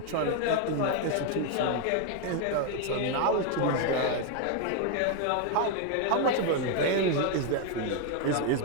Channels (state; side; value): different; both; correlation 0.01